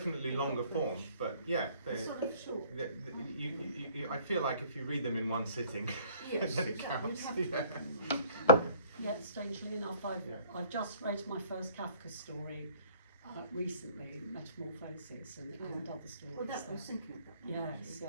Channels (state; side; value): inverted; both; correlation -0.53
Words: longer form, but yeah, they're sort of short. I feel like if you read them in one sitting, Yes, then it you'd counts. have Yeah. Yeah, strangely enough, I've just read my first Kafka story recently, Metamorphosis, and other stories. Well, that there. was thinking of that. Yes, yeah.